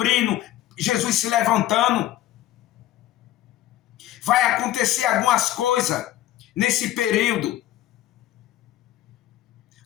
Jesus se levantando. Vai acontecer algumas coisas nesse período.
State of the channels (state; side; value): quieter; right; 13.9 dB